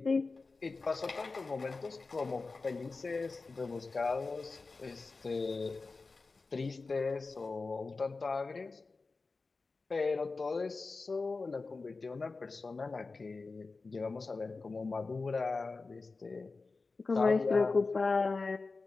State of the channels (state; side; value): quieter; right; 3.9 dB